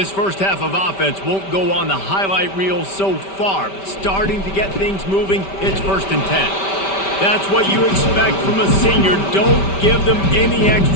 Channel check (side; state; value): right; late; 5.1 ms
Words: first half of offense won't go on the highlight reel so far, but starting to get things moving, it's 1st and 10. That's what you expect from a senior. Don't give them any